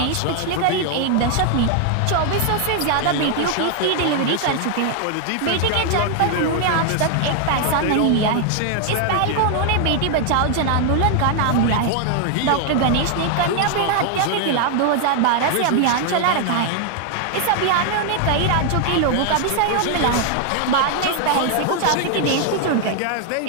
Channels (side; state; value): both; different; correlation 0.00